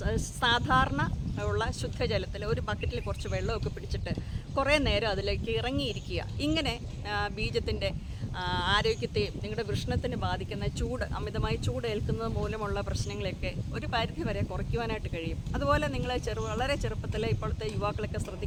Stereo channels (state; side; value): identical; both; correlation 1.00